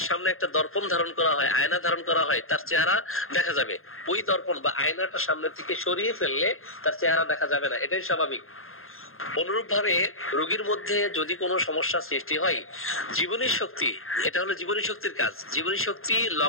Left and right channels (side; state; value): right; late; 0.61 ms